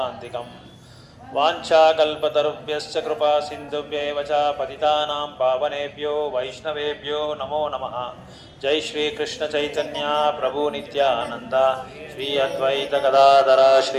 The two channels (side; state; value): both; identical; correlation 1.00